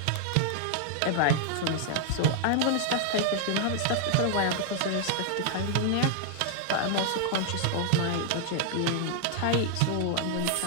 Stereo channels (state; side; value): different; both; correlation 0.00